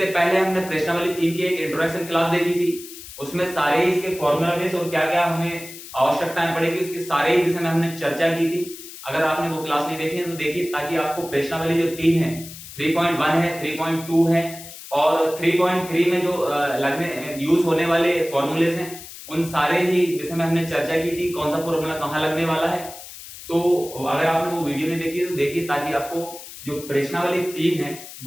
पहले हमने प्रश्नावली 3 की एक इंट्रोडक्शन क्लास देखी थी, उसमें सारे ही इसके फॉर्मूला बेस और क्या क्या हमें आवश्यकताएं पड़ेगी उसके सारे ही विषय में हमने चर्चा की थी। अगर आपने वो क्लास नहीं देखी है तो देखिए, ताकि आपको प्रश्नावली जो 3 है, 3.1 है, 3.2 है और 3.3 में जो लगने यूज होने वाले फॉर्मूलेस हैं, उन सारे ही विषय में हमने चर्चा की थी, कौन सा फॉर्मूला कहाँ लगने वाला है। तो अगर आपने वो वीडियो नहीं देखी तो देखिए, ताकि आपको जो प्रश्नावली 3 है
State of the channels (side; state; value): left; noise; hiss, 14 dB below the sound